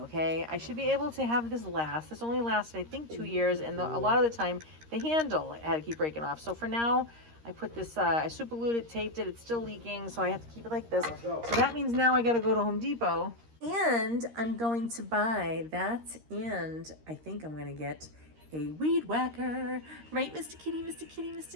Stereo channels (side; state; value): left; late; 13 ms